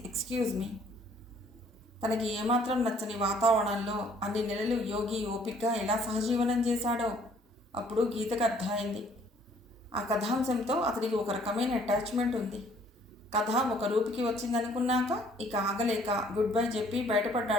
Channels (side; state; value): both; normal; correlation 0.60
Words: excuse me. తనకి ఏమాత్రం నచ్చని వాతావరణంలో అన్ని నెలలు యోగి ఓపికగా ఎలా సహజీవనం చేశాడో అప్పుడు గీతకు అర్థమైంది. ఆ కథాంశంతో అతనికి ఒక రకమైన అటాచ్మెంట్ ఉంది. కథ ఒక రూపుకి వచ్చిందనుకున్నాక ఇక ఆగలేక గుడ్ బై చెప్పి